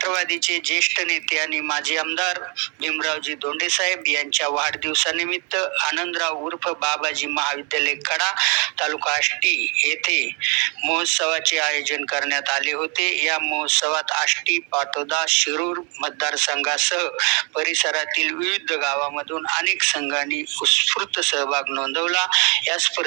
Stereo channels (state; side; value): quieter; left; 34.2 dB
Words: ज्येष्ठ नेते आणि माजी आमदार भीमरावजी धोंडे साहेब यांच्या वाढदिवसानिमित्त आनंदराव उर्फ बाबाजी महाविद्यालय कडा, तालुका आष्टी येथे महोत्सवाचे आयोजन करण्यात आले होते. या महोत्सवात आष्टी, पाटोदा, शिरूर मतदारसंघासह परिसरातील विविध गावामधून अनेक संघांनी उत्स्फूर्त सहभाग नोंदवला. या